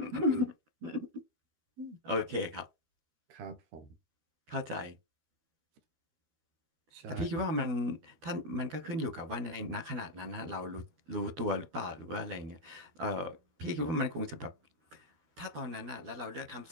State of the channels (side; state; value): left; late; 13 ms